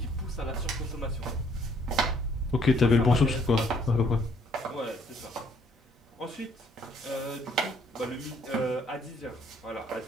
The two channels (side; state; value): both; normal; correlation 0.65